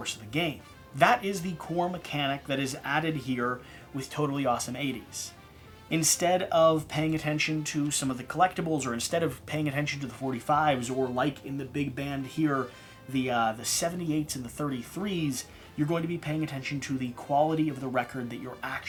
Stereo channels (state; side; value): identical; both; correlation 1.00